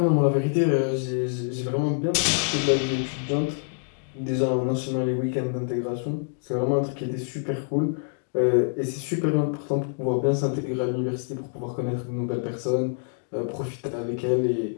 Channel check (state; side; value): silent; right; digital silence